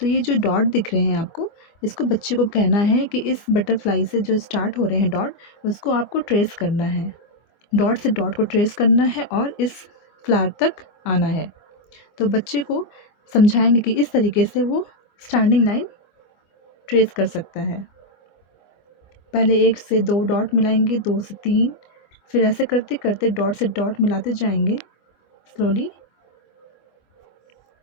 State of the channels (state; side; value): late; right; 25 ms